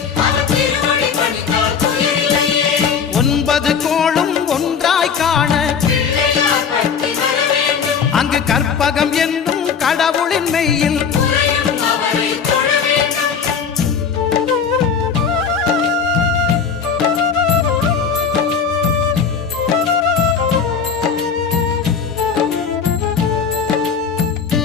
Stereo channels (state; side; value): quieter; right; 6.4 dB